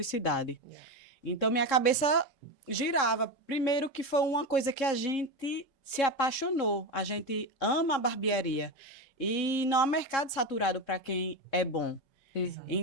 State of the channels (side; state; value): right; late; 3.7 ms